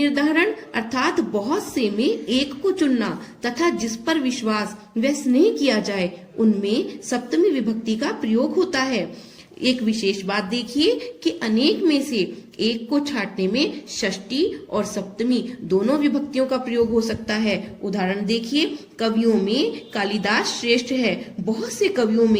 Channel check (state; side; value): identical; both; correlation 1.00